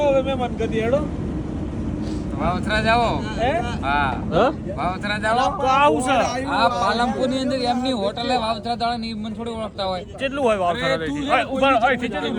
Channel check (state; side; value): identical; both; correlation 1.00